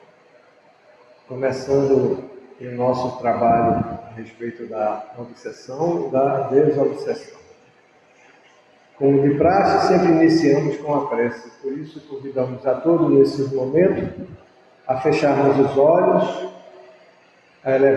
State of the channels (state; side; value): identical; both; correlation 1.00